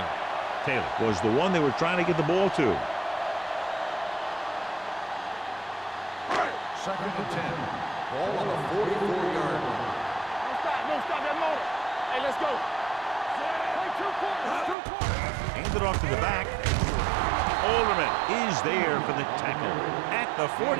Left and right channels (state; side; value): drops out; left; at 14.8 s